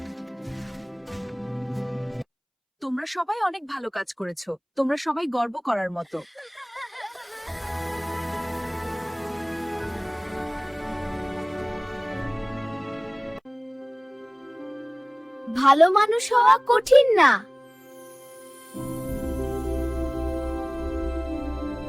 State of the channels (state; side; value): identical; both; correlation 1.00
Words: তোমরা সবাই অনেক ভালো কাজ করেছো। তোমরা সবাই গর্ব করার মতো। ভালো মানুষ হওয়া কঠিন না।